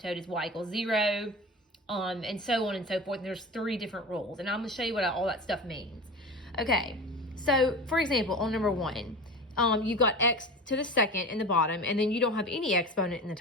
is y equals 0, and so on and so forth. And there's 3 different rules, and I'm going to show you what all that stuff means. Okay, so for example, on number 1, you've got x to the second in the bottom, and then you don't have any exponent in the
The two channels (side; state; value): both; normal; correlation 0.32